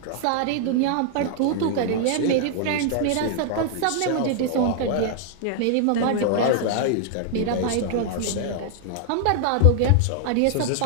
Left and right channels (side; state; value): both; different; correlation 0.00